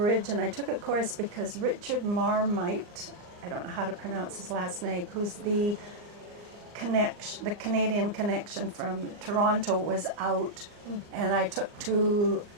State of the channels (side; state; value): left; late; 39 ms